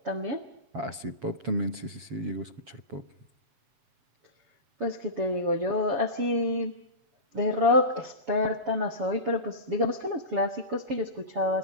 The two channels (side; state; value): left; late; 7.4 ms